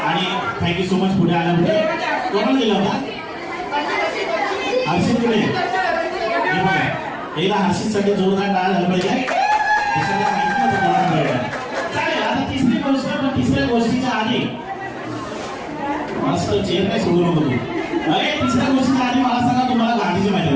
आणि थँक्यू सो मच पुढे आल्यामुळे. कोणाला दिला होता? हर्षित पुढे. हे बघा. एकदा हर्षितसाठी जोरदार टाळ्या झाला पाहिजे. चालेल. आता तिसरी गोष्ट. पण तिसऱ्या गोष्टीच्या आधी मस्त चेअर नाही सोडू नको तू. अरे तिसऱ्या गोष्टीच्या आधी मला सांगा, तुम्हाला गांधीची माहिती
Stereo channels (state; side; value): identical; both; correlation 1.00